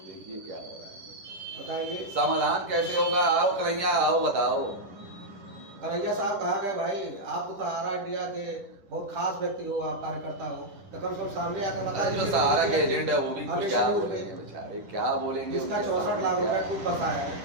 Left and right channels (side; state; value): left; late; 10 ms